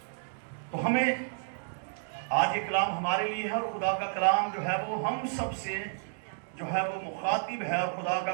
तो हमें आज ये कलाम हमारे लिए है, और खुदा का कलाम जो है वो हम सब से जो है वो मुखातिब है, और खुदा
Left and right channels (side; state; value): left; silent; digital silence